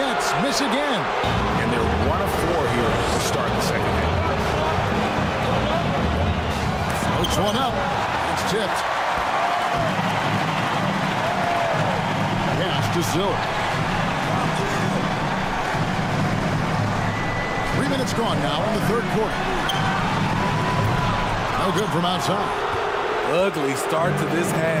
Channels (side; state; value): both; identical; correlation 1.00